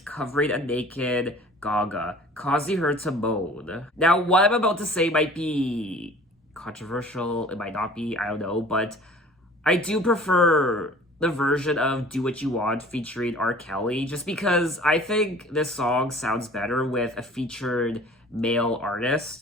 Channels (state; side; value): normal; both; correlation 0.47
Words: covering a naked Gaga, causing her to moan. Now, what I'm about to say might be controversial, it might not be, I don't know, but I do prefer the version of Do What You Want featuring R. Kelly, just because I think this song sounds better with a featured male artist.